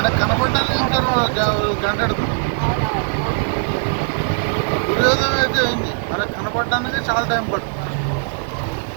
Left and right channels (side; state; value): left; silent; digital silence